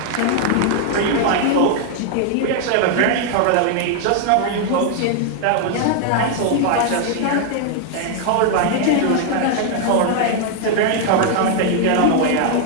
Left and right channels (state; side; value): different; both; correlation 0.00